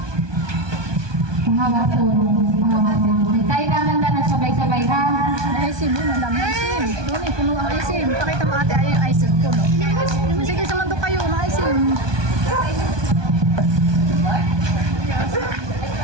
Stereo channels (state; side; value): late; left; 1.2 ms